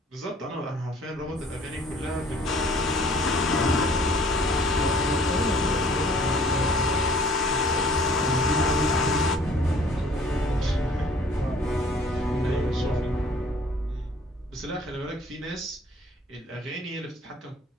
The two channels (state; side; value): normal; both; correlation 0.55